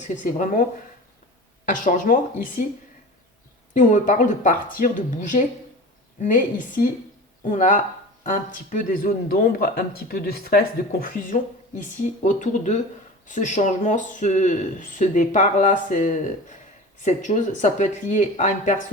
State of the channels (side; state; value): both; normal; correlation 0.35